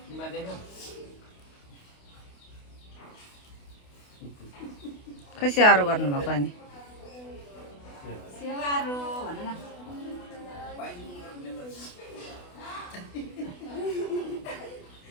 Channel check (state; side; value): late; right; 28 ms